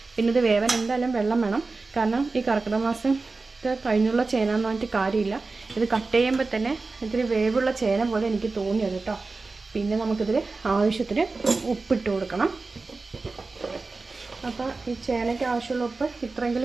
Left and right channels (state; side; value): quieter; left; 3.8 dB